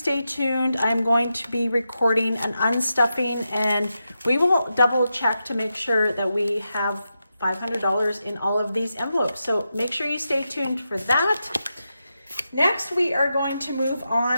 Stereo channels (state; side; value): inverted; both; correlation -0.88